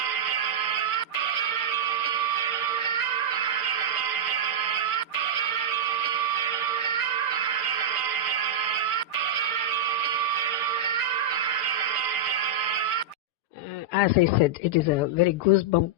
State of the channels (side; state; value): right; late; 6.7 ms